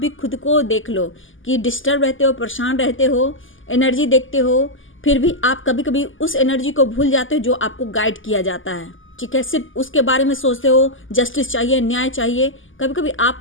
खुद को देख लो कि डिस्टर्ब रहते हो, परेशान रहते हो, एनर्जी देखते हो, फिर भी आप कभी कभी उस एनर्जी को भूल जाते हो जो आपको गाइड किया जाता है। ठीक है, सिर्फ उसके बारे में सोचते हो, जस्टिस चाहिए, न्याय चाहिए। कभी कभी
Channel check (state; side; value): late; right; 0.58 ms